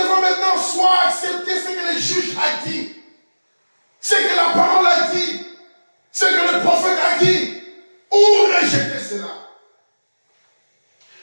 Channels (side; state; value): both; inverted; correlation -1.00